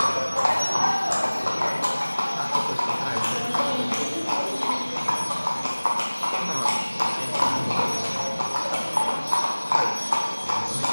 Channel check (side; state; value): both; inverted; correlation -1.00